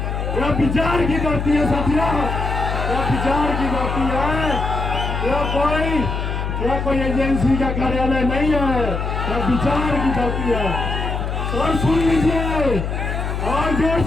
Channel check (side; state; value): left; noise; hum, 3 dB below the sound